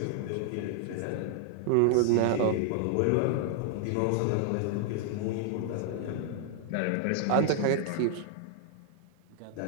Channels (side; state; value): both; different; correlation 0.00